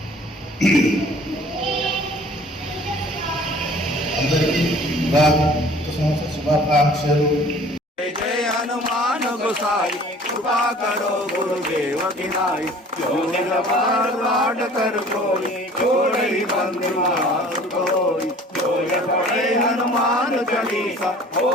అందరికీ శుభాకాంక్షలు। जय जय हनुमान गोसाई कृपा करो गुरुदेव की नाई। जो निरपराध कर कोई छोड़ई बंधु कोई। जो पढ़े हनुमान चालीसा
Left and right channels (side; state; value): both; normal; correlation 0.49